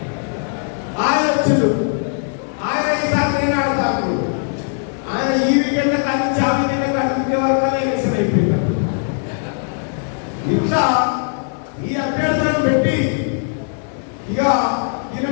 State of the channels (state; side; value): silent; right; 57 dB below the other